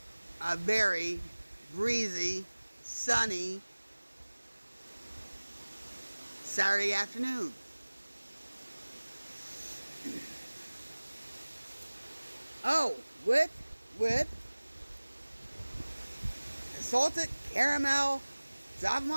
a very breezy, sunny Saturday afternoon. Oh, with salted caramel Java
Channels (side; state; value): both; inverted; correlation -1.00